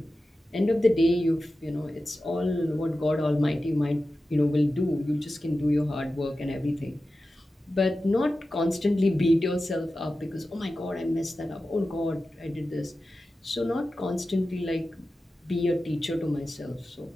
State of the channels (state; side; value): normal; both; correlation 0.93